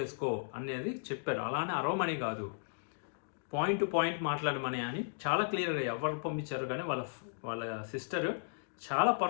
అనేది చెప్పారు. అలానే అరవమని కాదు, పాయింట్ టు పాయింట్ మాట్లాడమని అని చాలా క్లియర్గా ఎవరు పంపించారు కానీ వాళ్ళ సిస్టర్ చాలా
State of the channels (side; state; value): right; silent; digital silence